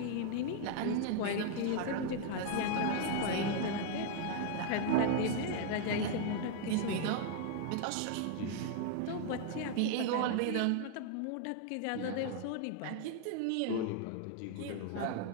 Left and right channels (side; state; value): both; different; correlation 0.00